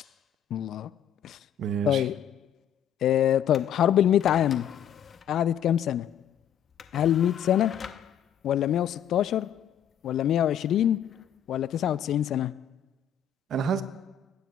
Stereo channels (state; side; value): quieter; right; 8.8 dB